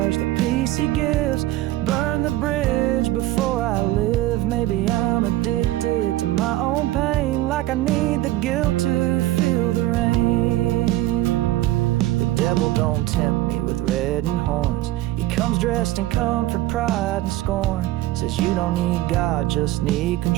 the peace he gives, burn the bridge before I live. Maybe I'm addicted to my own pain, like I need the guilt to feel the rain. The devil don't tempt me with reddening horns. He comes dressed in comfort, pride, and scorn. Says you don't need God, just need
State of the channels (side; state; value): left; quieter; 15.8 dB